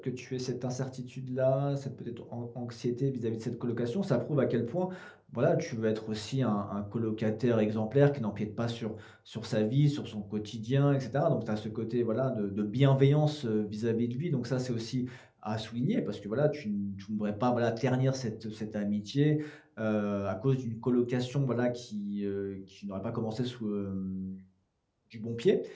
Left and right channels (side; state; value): both; identical; correlation 1.00